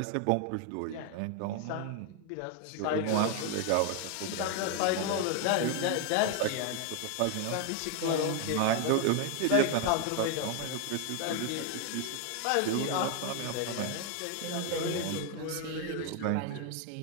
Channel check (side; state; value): both; different; correlation 0.01